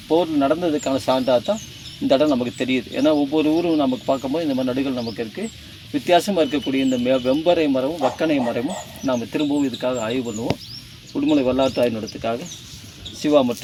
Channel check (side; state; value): both; identical; correlation 1.00